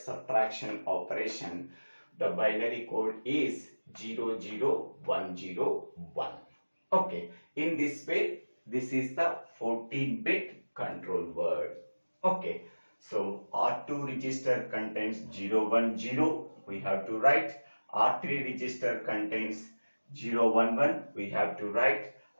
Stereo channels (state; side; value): inverted; both; correlation -1.00